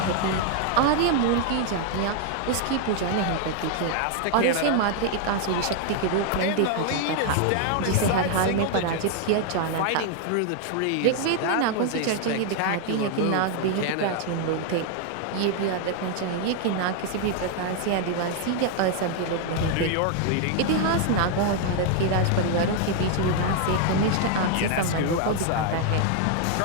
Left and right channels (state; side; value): different; both; correlation 0.00